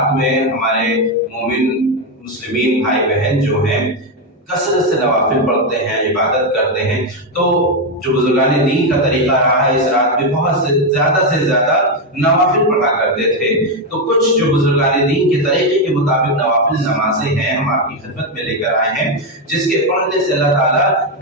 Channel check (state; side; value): normal; both; correlation 0.06